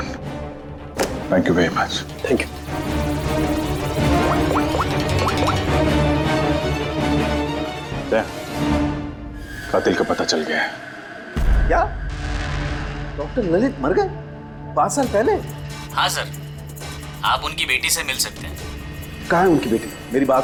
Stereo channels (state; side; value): identical; both; correlation 1.00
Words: Thank you very much. Thank you. कातिल का पता चल गया है। क्या डॉक्टर ललित मर गए 5 साल पहले? हाँ सर, आप उनकी बेटी से मिल सकते हैं। कहाँ है उनकी बेटी? मेरी